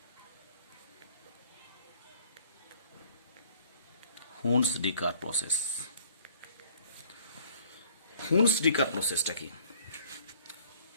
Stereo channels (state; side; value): inverted; both; correlation -0.56